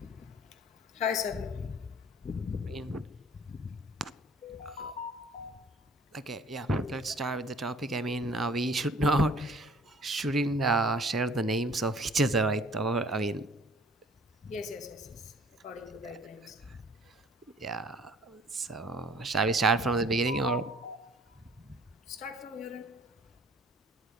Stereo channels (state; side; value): normal; both; correlation 0.54